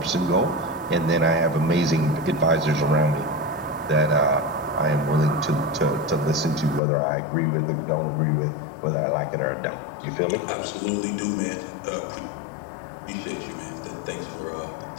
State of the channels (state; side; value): drops out; right; at 6.8 s